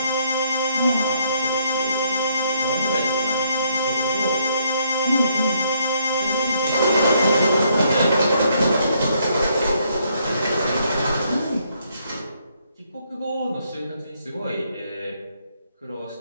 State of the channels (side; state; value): both; inverted; correlation -0.71